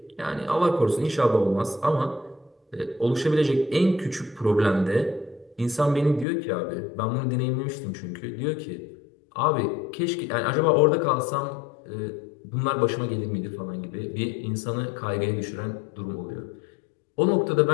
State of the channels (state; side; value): drops out; right; at 6.2 s